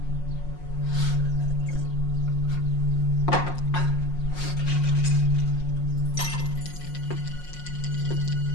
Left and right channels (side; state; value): right; late; 5.5 ms